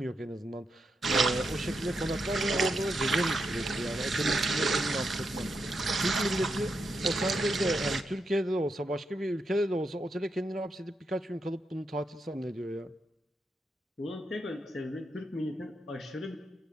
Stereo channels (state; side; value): normal; both; correlation 0.83